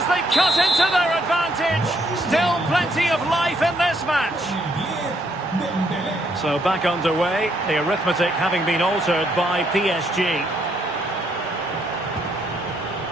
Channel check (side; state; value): both; normal; correlation 0.71